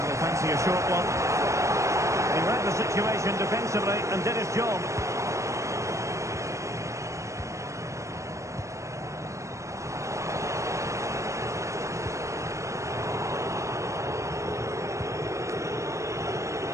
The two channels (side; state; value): left; late; 0.15 ms